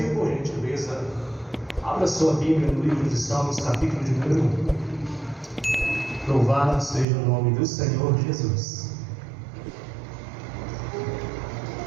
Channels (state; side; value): drops out; left; at 7.1 s